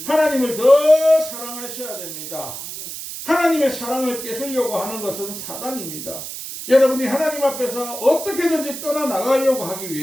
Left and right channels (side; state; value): right; noise; hiss, 9 dB below the sound